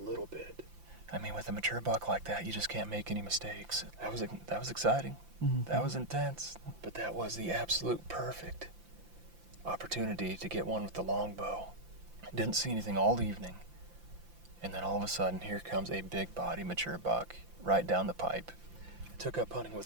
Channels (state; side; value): late; left; 5.8 ms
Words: bit. I mean, with a mature buck like that, you just can't make any mistakes. That was exciting. Mm-hmm. That was intense. But that was the absolute perfect opportunity to get one with the longbow. Didn't see anything all evening. And then all of a sudden, here comes a big body mature buck right down the pipe. I took up hunting